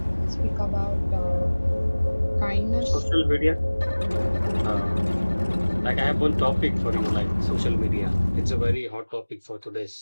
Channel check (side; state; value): both; inverted; correlation -1.00